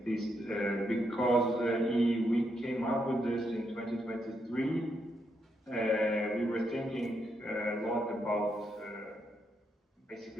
least because we came up with this in 2023. We were thinking a lot about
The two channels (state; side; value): normal; both; correlation 0.79